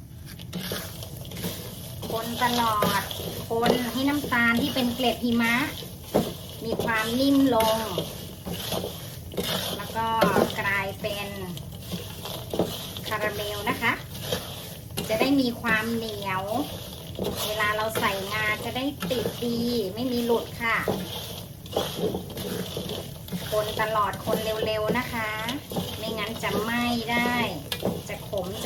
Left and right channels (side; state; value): both; identical; correlation 1.00